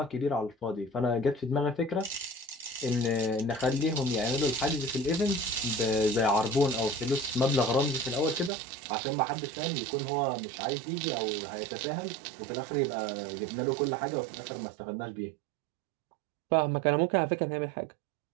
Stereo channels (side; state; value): left; drops out; at 8.5 s